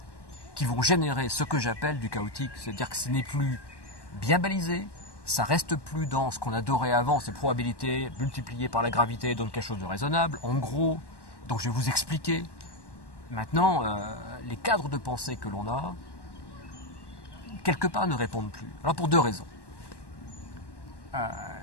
qui vont générer ce que j'appelle du chaotique. C'est-à-dire que ce n'est plus bien balisé, ça reste plus dans ce qu'on adorait avant, ces probabilités multipliées par la gravité donnent quelque chose de raisonnable. En gros, donc je vais vous expliquer. Maintenant, les cadres de pensée que l'on a, quelque part ne répondent plus. Alors pour deux raisons.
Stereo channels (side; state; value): right; late; 1.1 ms